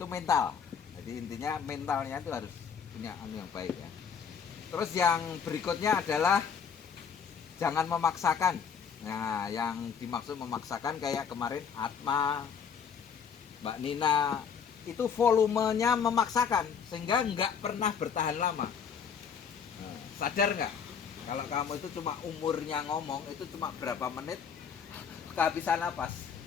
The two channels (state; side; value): quieter; right; 6.9 dB